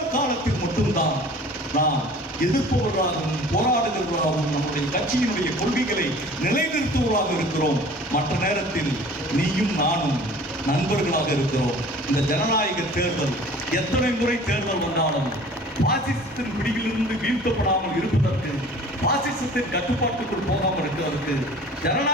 காலத்தில் மட்டும்தான் நாம் எதிர்ப்பவர்களாகவும் போராடுகிறவர்களாகவும் நம்முடைய கட்சியினுடைய கொள்கைகளை நிலைநிறுத்துவதாக இருக்கிறோம். மற்ற நேரத்தில் நீயும் நானும் நண்பர்களாக இருக்கிறோம். இந்த ஜனநாயக தேர்தல் எத்தனை முறை தேர்தல் வந்தாலும் பாசிசத்தின் பிடியிலிருந்து வீழ்த்தப்படாமல் இருப்பதற்கு, பாசிசத்தின் கட்டுப்பாட்டுக்குள் போகாமல் இருக்கிறதற்கு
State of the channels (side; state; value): both; normal; correlation 0.46